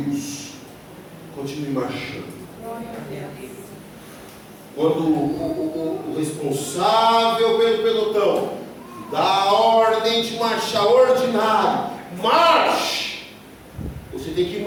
Continue marchando. Quando o responsável pelo pelotão dá a ordem de marchar ordinário, marche. Você tem que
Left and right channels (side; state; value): both; identical; correlation 1.00